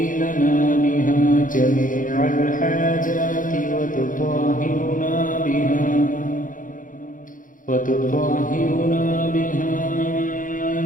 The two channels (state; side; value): late; right; 0.39 ms